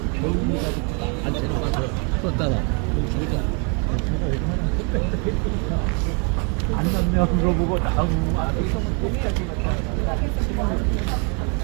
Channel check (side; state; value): left; quieter; 35.9 dB